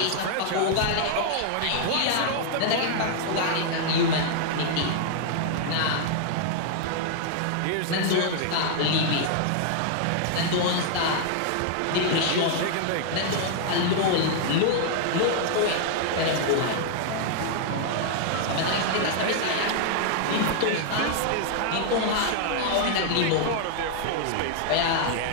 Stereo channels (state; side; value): different; both; correlation -0.01